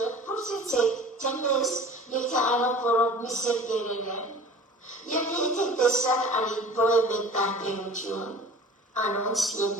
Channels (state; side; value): normal; both; correlation 0.42